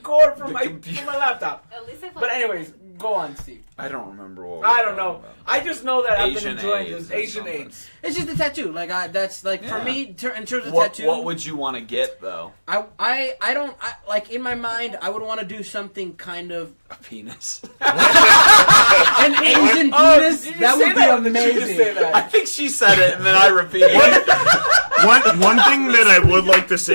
cord from my computer. from my laptop. At least I But anyways, Go on, Steve. I don't remember what. I don't know. I just know that I've been Asian enjoying AIDS this or Asian something. AIDS. It's just a tattoo. Like that's like for Yeah. me in terms of What, tattoo. what would you want to get though? I don't like in my mind. I would want to do something kind of A penis. an Asian penis. Did you That say would be that or did you just amazing. say that? I think she said it and then I repeated it. One thing that I would like to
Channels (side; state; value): both; inverted; correlation -1.00